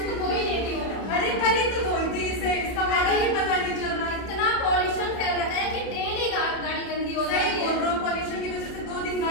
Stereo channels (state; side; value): late; right; 31 ms